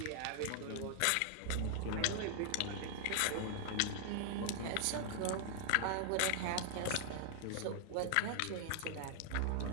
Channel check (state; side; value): different; both; correlation 0.00